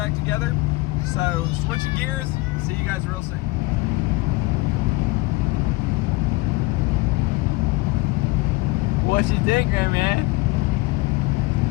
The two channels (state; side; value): quieter; right; 22.1 dB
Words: together. So switching gears. See you guys real soon. What you think, man?